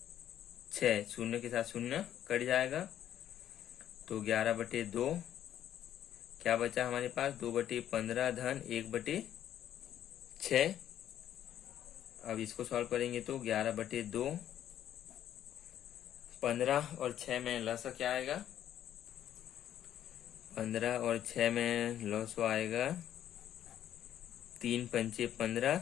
0 के साथ 0 कट जाएगा। तो 11/2 क्या बचा हमारे पास? 2/15 धन 1/6। अब इसको सॉल्व करेंगे तो 11/2, 15 और 6 में लसअ क्या आएगा? 15 और 6 में लसअ आएगा 3 पंचे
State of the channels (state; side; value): quieter; right; 11.0 dB